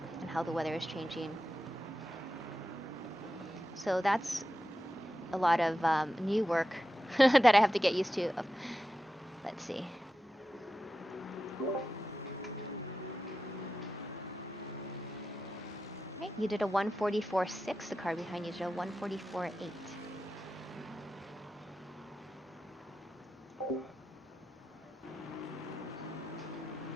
and how the weather is changing. So that's a lot of new work that I have to get used to. Let's see. Right, you did a 144.6. The car behind you did a 144.8.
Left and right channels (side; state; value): both; normal; correlation 0.91